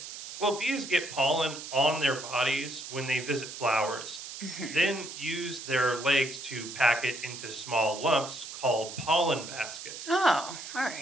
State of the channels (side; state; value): right; noise; hiss, 10 dB below the sound